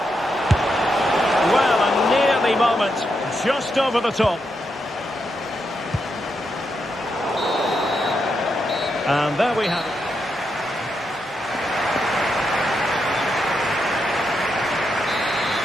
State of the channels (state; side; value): normal; both; correlation 0.83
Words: Well, a nearly moment. Just over the top. And there we have it.